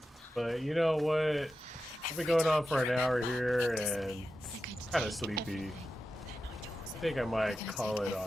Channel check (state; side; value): normal; both; correlation 0.91